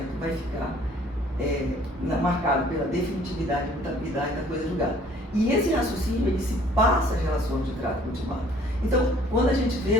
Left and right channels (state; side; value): normal; both; correlation 0.57